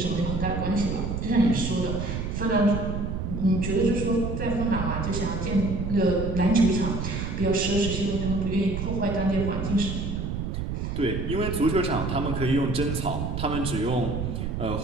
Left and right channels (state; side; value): noise; right; rumble, 3 dB below the sound